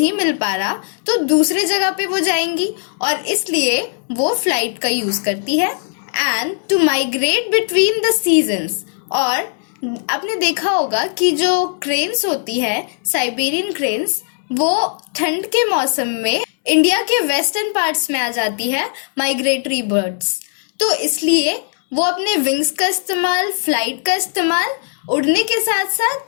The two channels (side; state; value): right; silent; digital silence